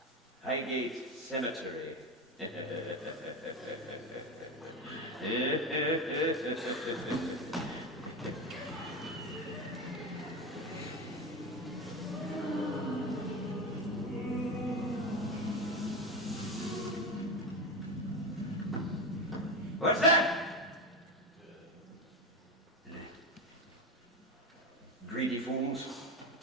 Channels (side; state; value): both; normal; correlation 0.19